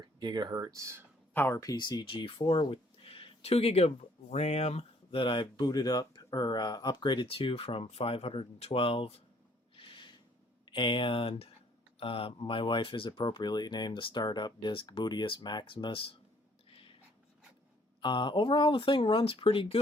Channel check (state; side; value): normal; both; correlation 0.63